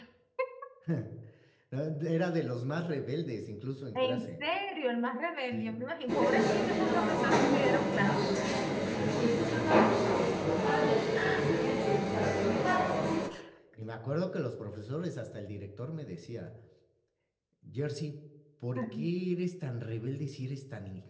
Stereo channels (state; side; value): identical; both; correlation 1.00